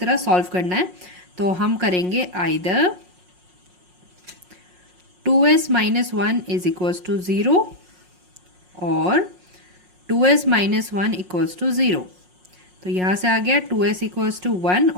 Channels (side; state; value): left; late; 5.5 ms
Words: सॉल्व करना है। तो हम करेंगे either 2s - 1 is equals to 0 और 2s - 1 इक्वल्स टू 0। तो यहाँ से आ गया 2s इक्वल्स टू 1